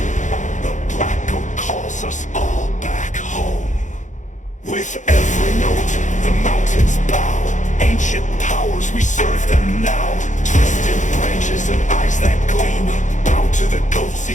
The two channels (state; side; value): late; right; 0.36 ms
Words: the black goat calls us all back home. With every note, the mountains bow. Ancient powers, we serve them now. Twisted branches and eyes that gleam, bow to the goat's